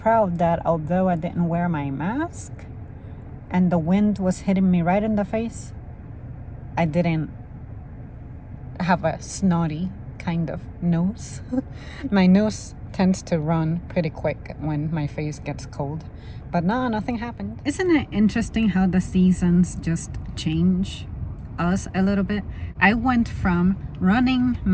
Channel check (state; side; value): identical; both; correlation 1.00